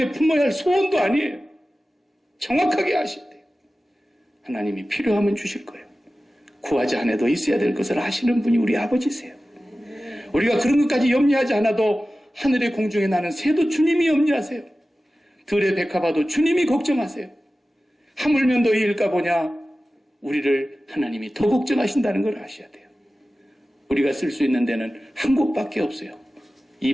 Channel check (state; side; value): normal; both; correlation 0.95